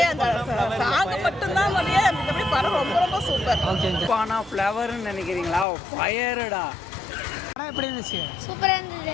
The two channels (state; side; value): drops out; right; at 5.7 s